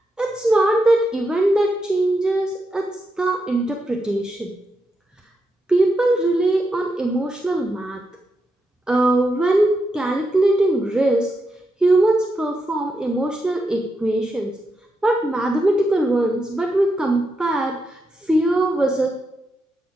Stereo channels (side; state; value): both; normal; correlation 0.84